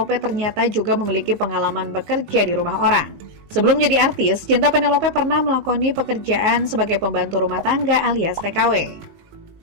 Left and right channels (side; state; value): left; late; 19 ms